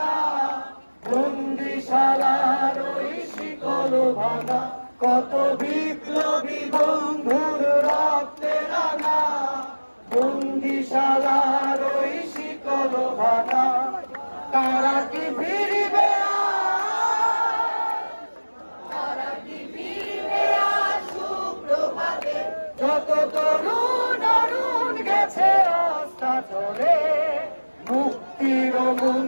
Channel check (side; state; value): both; inverted; correlation -1.00